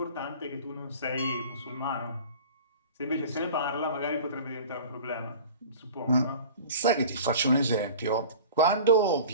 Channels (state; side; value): inverted; both; correlation -0.39